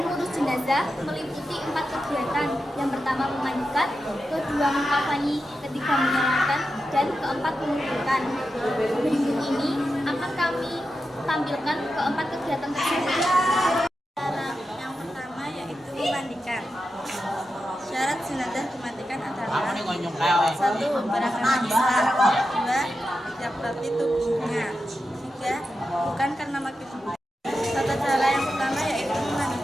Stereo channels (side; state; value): both; normal; correlation 0.89